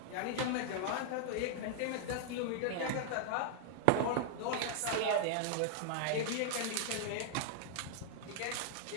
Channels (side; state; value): both; different; correlation 0.00